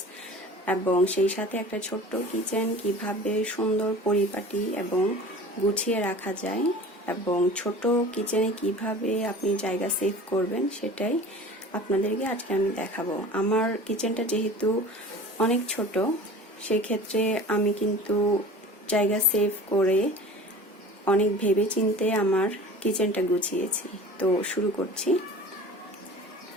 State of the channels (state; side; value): normal; both; correlation 0.40